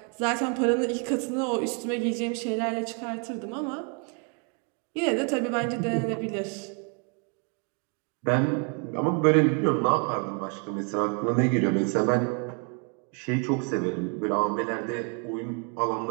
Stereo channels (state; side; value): quieter; left; 38.3 dB